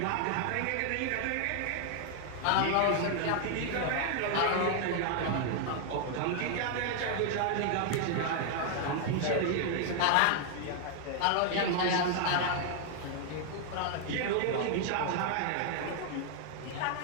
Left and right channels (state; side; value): different; both; correlation 0.00